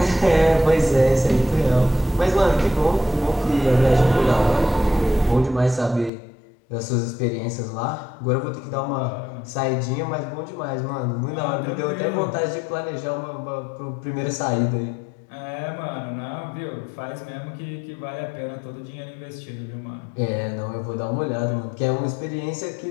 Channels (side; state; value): right; drops out; at 6.1 s